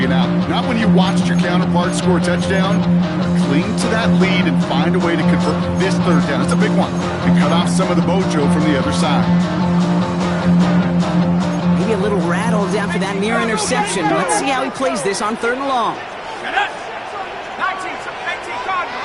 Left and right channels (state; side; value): identical; both; correlation 1.00